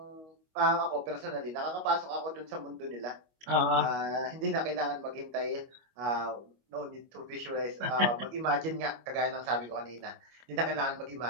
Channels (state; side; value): late; left; 25 ms